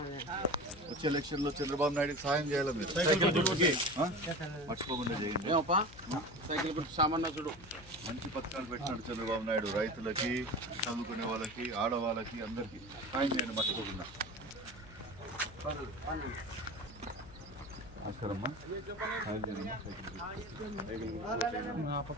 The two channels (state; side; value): noise; left; hum, 19 dB below the sound